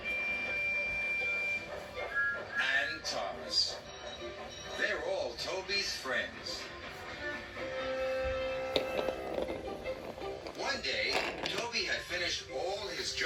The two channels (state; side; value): identical; both; correlation 1.00